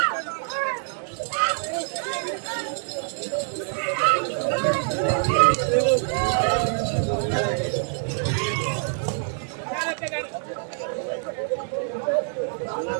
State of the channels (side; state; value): left; silent; digital silence